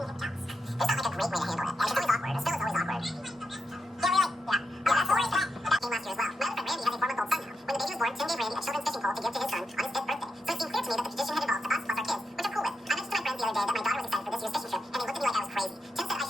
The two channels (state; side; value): normal; both; correlation 0.85